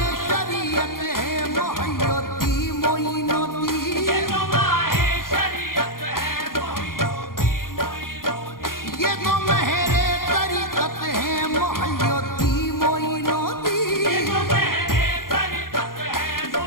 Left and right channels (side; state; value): right; late; 0.91 ms